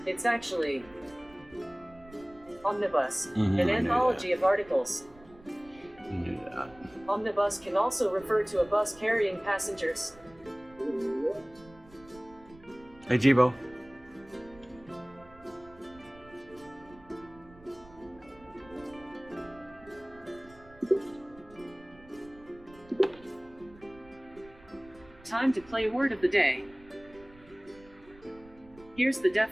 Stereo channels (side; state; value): right; noise; rumble, 23 dB below the sound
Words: It's actually omnibus, an anthology of articles. You knew that. Omnibus can also refer to a bus carrying passengers. Hey, Jibo. Time to play word of the day. Here's the